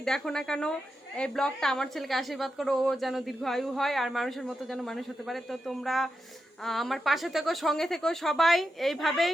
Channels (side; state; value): both; normal; correlation 0.87